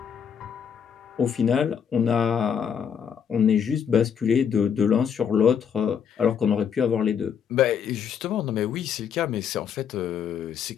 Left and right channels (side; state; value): right; quieter; 7.6 dB